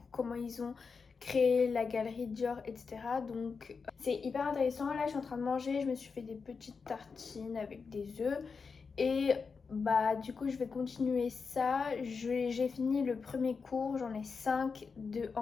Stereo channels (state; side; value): quieter; right; 5.1 dB